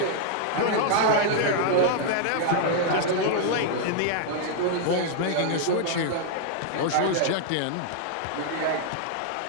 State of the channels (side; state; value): both; different; correlation 0.00